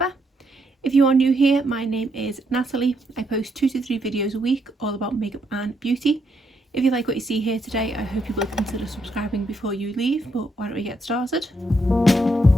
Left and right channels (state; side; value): normal; both; correlation 0.77